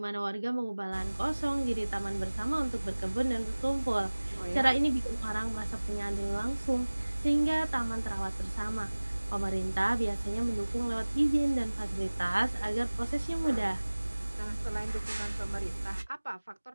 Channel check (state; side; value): inverted; both; correlation -1.00